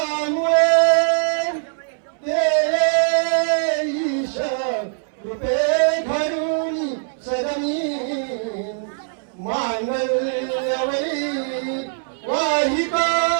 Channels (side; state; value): left; silent; 65 dB below the other